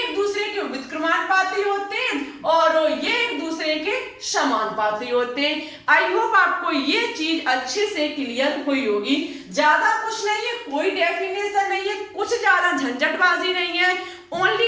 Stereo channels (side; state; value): both; identical; correlation 1.00